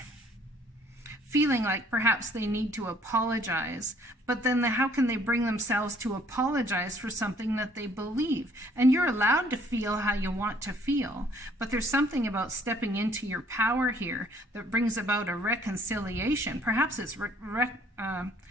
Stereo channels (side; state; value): both; normal; correlation 0.60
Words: feeling like perhaps they need to apologize, but then how can they bring themselves to apologize for something that they believe? And you're allowed to feel how you want to feel, but there's something about stepping into your power here that brings about a reconciliation. Perhaps it's